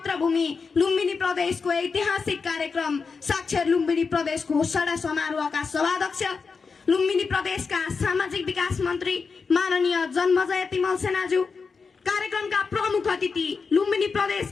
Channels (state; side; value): quieter; right; 5.0 dB